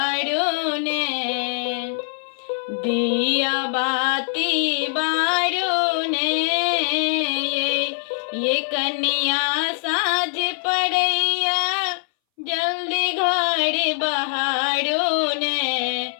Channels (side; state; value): right; silent; 63 dB below the other